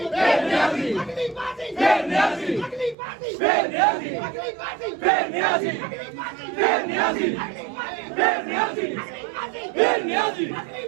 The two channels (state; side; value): drops out; left; at 3.0 s